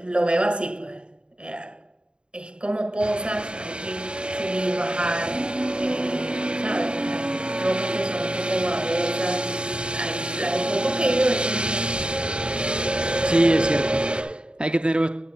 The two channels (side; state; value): left; late; 0.052 ms